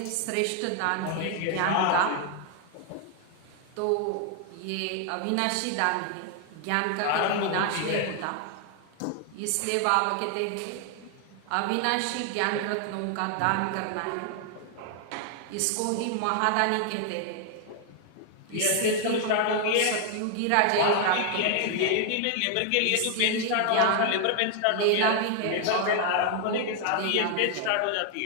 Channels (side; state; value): both; different; correlation 0.00